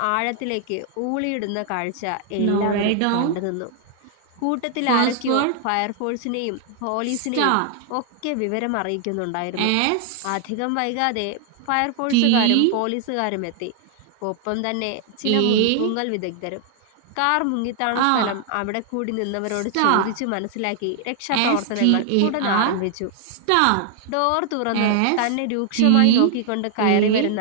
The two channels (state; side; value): different; both; correlation 0.00